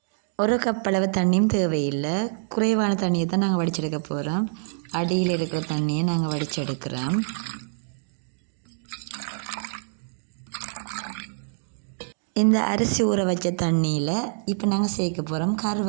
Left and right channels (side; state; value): left; silent; digital silence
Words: ஒரு கப் அளவு தண்ணியும் தேவையில்லை, குறைவான தண்ணியை தான் நாங்கள் வடிச்செடுக்க போகிறோம். அடியில் இருக்கிற தண்ணியை நாங்கள் வடிச்செடுக்கிறோம். இந்த அரிசி ஊற வச்ச தண்ணியில் இப்போ நாங்கள் சேர்க்க போகிறோம்